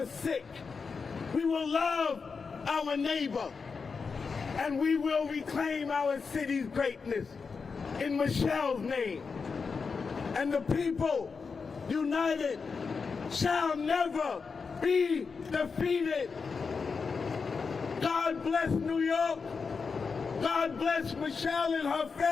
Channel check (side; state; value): right; quieter; 5.1 dB